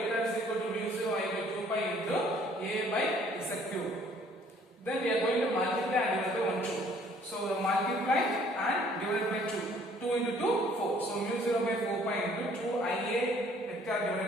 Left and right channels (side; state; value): both; normal; correlation 0.59